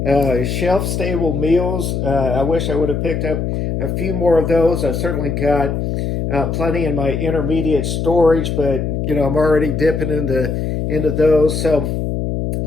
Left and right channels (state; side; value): noise; left; hum, 1 dB below the sound